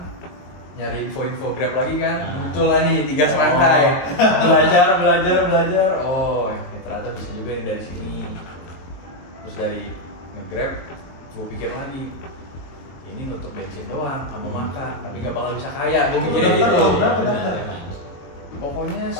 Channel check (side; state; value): right; late; 23 ms